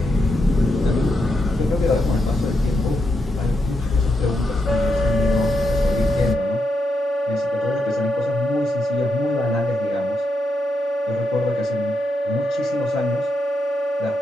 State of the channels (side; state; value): both; normal; correlation 0.83